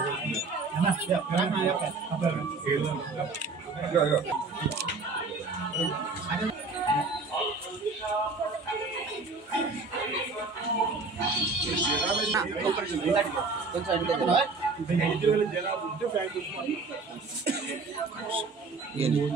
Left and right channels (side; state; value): left; quieter; 3.9 dB